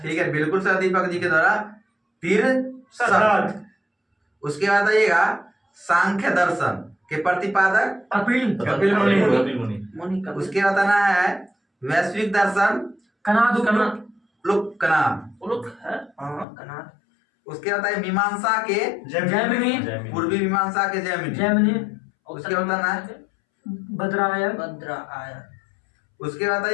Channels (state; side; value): drops out; right; at 16.4 s